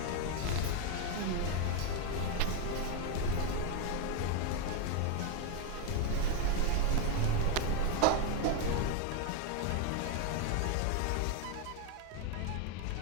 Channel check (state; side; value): different; both; correlation 0.01